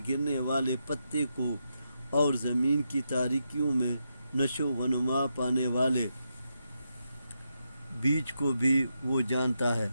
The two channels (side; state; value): both; inverted; correlation -0.84